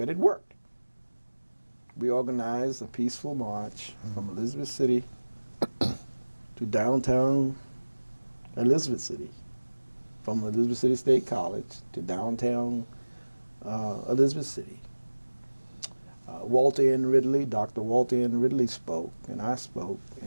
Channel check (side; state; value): both; inverted; correlation -1.00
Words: it worked. We organized a peaceful march from Elizabeth City to downtown Elizabeth City, from Elizabeth City State College to downtown Elizabeth City. Walter N. Ridley, Dr. Walter N. Ridley spoke, and I spoke,